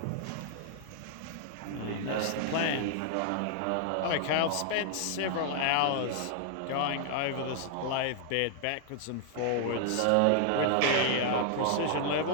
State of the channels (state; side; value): different; both; correlation -0.01